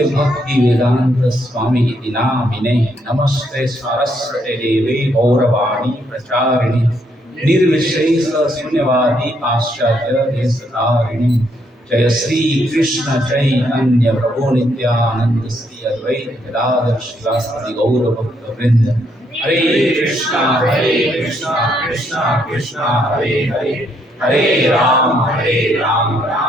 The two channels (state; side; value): normal; both; correlation 0.73